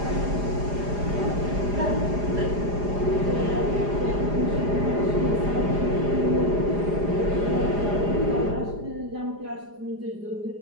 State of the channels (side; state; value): left; late; 4.9 ms